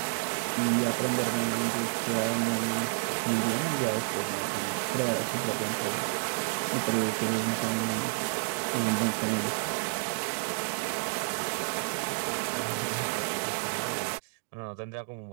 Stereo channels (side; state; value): left; silent; 58 dB below the other